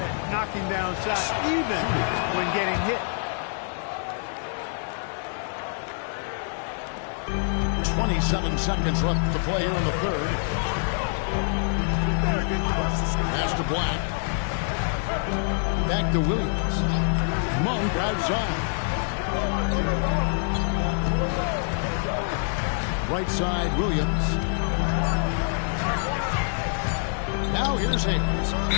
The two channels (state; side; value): silent; right; digital silence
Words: knocking down shots, even when getting hit. 27 seconds left to play here in the third. Pass to Black. Back to Williams. Monk outside. Right side, Williams. Now here's Hayes.